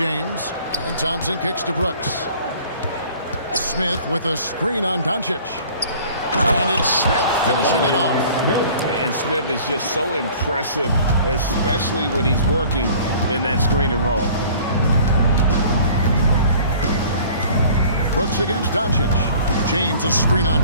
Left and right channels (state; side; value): inverted; both; correlation -0.49